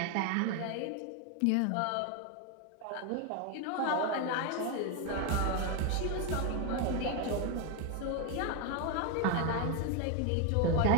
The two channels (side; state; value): both; different; correlation 0.01